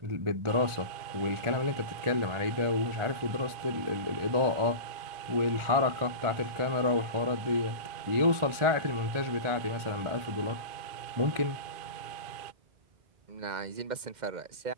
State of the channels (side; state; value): left; late; 1.4 ms